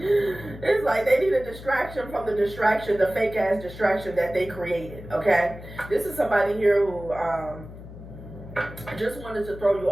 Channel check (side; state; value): left; noise; hum, 14 dB below the sound